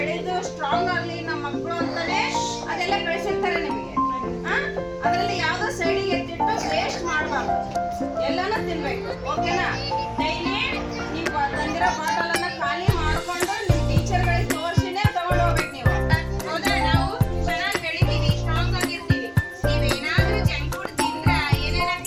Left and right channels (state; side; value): identical; both; correlation 1.00